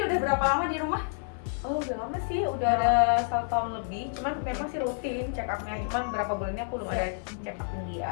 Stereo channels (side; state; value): right; silent; 56 dB below the other